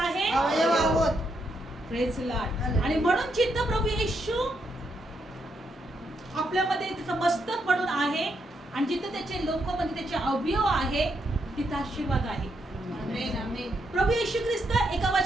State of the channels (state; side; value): normal; both; correlation 0.79